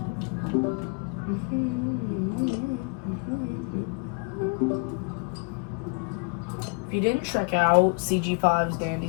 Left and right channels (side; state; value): right; quieter; 34.1 dB